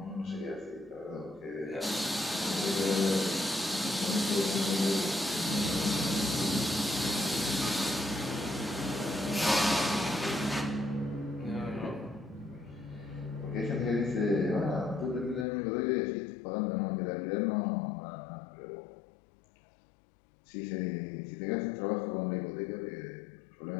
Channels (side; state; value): right; drops out; at 15.5 s